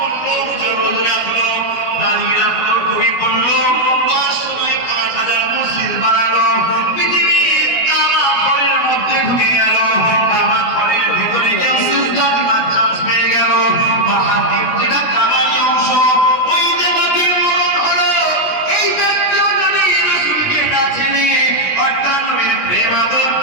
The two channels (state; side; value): late; right; 17 ms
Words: রোজ রাখলো, দাঁড়িয়ে রাখলো, টুপি পড়লো, 500 মসজিদ বানালো, পৃথিবীর কাবা ঘরের মধ্যে ঢুকে গেল, কাবা ঘরের ভিতরে কেউ সিজদা দিবার চান্স পেয়ে গেল, বাহাতির যেটা কাবারই অংশ ওই দেবতার মরণ হলো। এই ব্যক্তিও যদি রাসূলকে না চেনে, অর্থাৎ নবীর প্রেম আদর